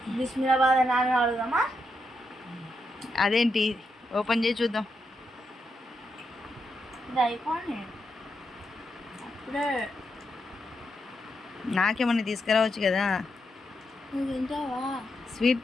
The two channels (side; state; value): both; normal; correlation 0.83